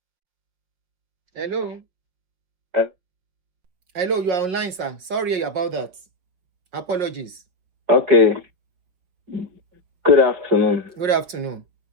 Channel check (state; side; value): late; left; 5.8 ms